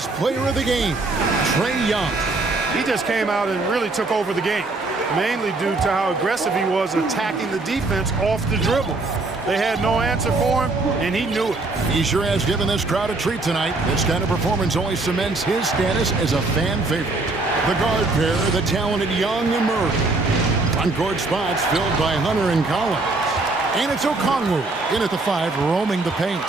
player of the game, Trae Young. He just came out and really took over the game, mainly due to how aggressive he was attacking the defense off the dribble. They had no answer for him, and he knew it. He sure has given this crowd a treat tonight. This kind of performance only cements his status as a fan favorite. The guard pair, the talented Young and Murray. On-court spots filled by Hunter and Collins. And it's Okongwu in at the 5, roaming the paint.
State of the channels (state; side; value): quieter; left; 3.3 dB